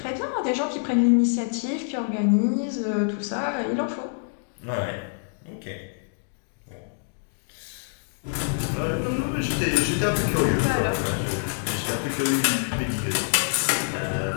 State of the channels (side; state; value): right; silent; digital silence